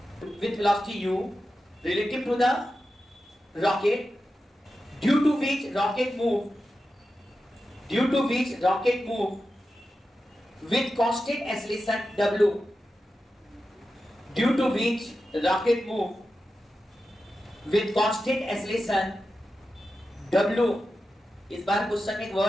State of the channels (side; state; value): both; normal; correlation 0.91